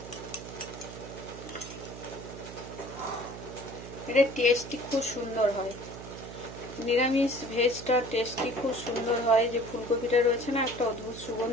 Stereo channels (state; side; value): noise; right; hum, 12 dB below the sound